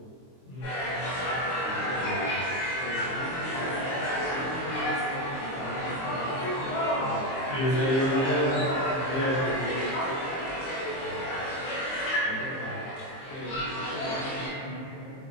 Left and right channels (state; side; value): late; right; 23 ms